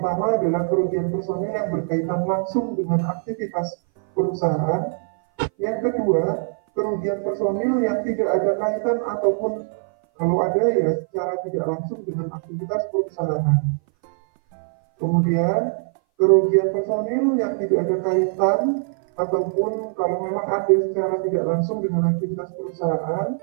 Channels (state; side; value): silent; left; 59 dB below the other